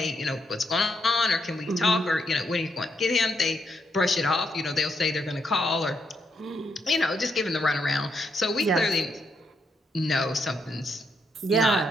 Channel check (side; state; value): both; normal; correlation 0.78